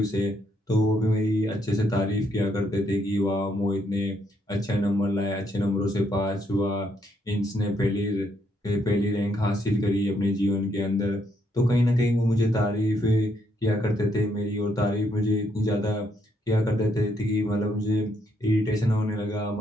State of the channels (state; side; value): normal; both; correlation 0.74